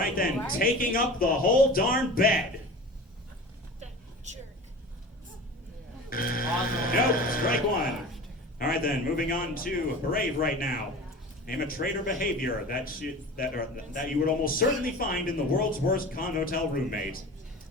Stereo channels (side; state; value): both; normal; correlation 0.37